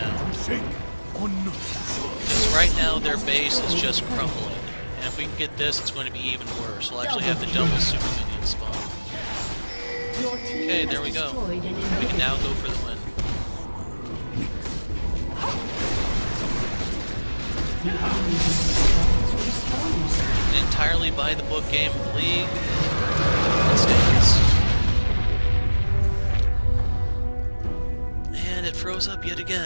Shake. On. Because right now their base is just crumbling. And if we can get this, it's going to be even worse. We'll actually have the double super minion spawn. Okay, there we go. We can now go for the win. An entirely by-the-book game of League. Let's dance. And it froze up yet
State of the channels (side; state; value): both; inverted; correlation -1.00